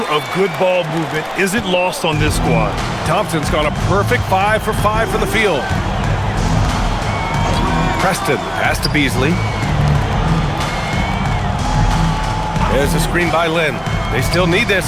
of good ball movement isn't lost on this squad. Thompson's got a perfect 5 for 5 from the field. Preston, pass to Beasley. There's a screen by Lynn. They still need this.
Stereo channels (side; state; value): both; identical; correlation 1.00